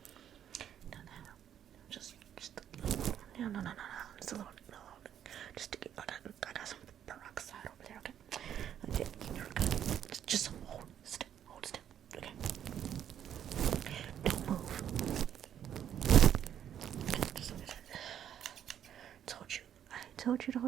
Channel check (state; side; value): quieter; left; 9.8 dB